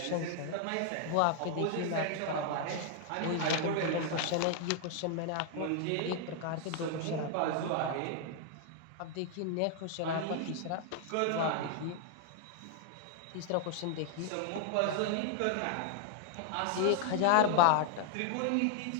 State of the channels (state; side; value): different; both; correlation 0.00